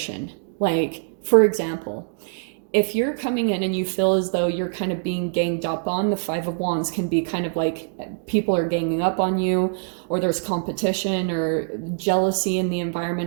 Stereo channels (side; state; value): left; silent; digital silence